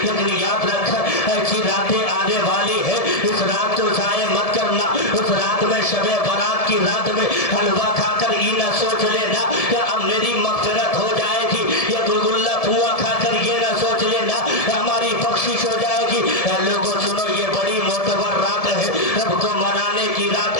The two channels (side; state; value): right; late; 1.7 ms